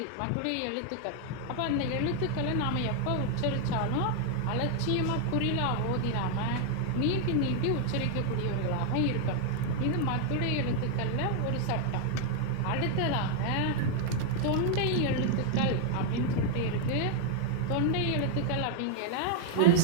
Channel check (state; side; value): different; both; correlation 0.00